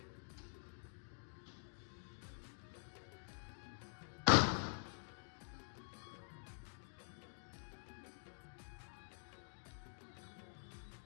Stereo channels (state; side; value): silent; right; digital silence